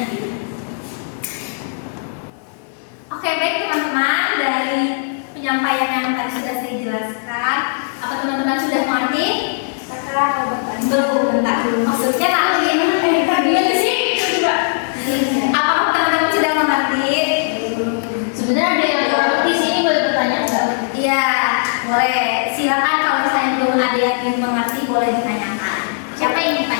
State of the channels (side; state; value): right; silent; digital silence